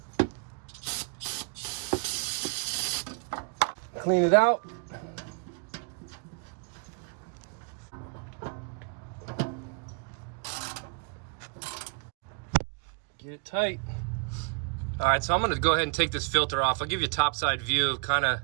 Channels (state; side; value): quieter; left; 34.8 dB